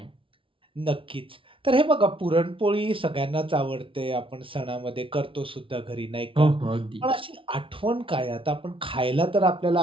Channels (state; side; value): late; left; 0.25 ms